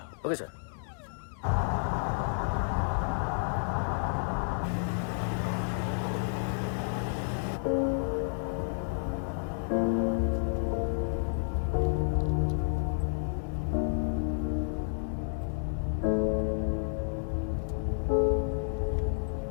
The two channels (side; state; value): right; silent; digital silence